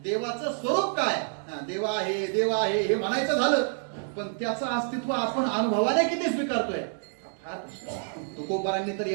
देवाचं स्वरूप काय देव आहे हे म्हणायचं झालं पण त्याचं अस्तित्व आपण अनुभवाने किती स्वीकारतोय फार तुकोबारांनी तर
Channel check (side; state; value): left; silent; digital silence